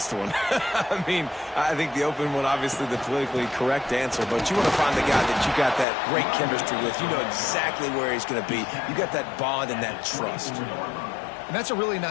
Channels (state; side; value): drops out; right; at 5.9 s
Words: one. I mean, I think the open one, obviously the politically correct answer, but you want to find the guy that you got that great chemistry with. You know exactly where he's going to be. You got that bond and that trust. And that's a really